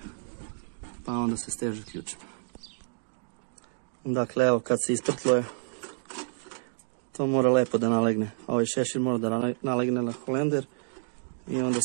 pa onda se steže ključima. Dakle, evo kad se isprtluje, to mora lepo da nalegne. Ovaj šešir mora da nalegne na holender i onda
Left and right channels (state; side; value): silent; left; digital silence